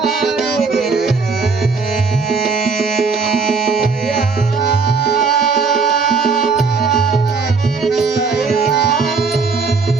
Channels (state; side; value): quieter; left; 4.7 dB